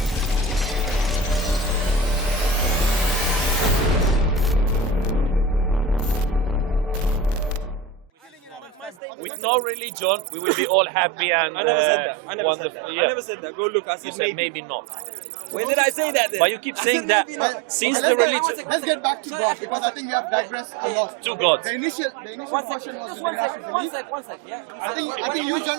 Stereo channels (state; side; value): drops out; left; at 9.0 s